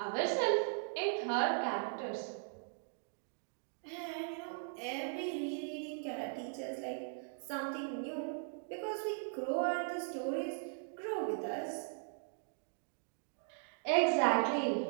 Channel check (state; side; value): silent; left; digital silence